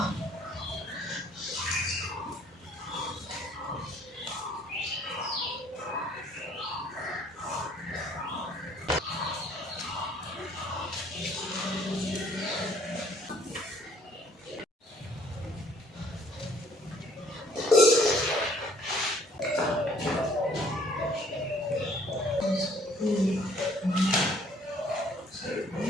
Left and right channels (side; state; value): both; normal; correlation 0.60